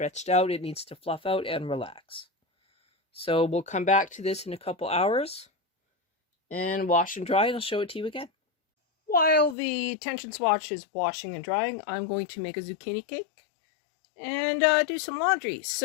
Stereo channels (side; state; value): right; drops out; at 9.6 s